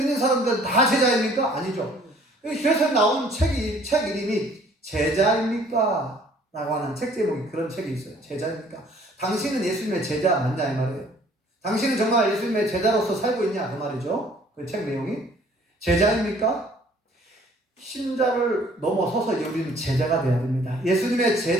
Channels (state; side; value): normal; both; correlation 0.57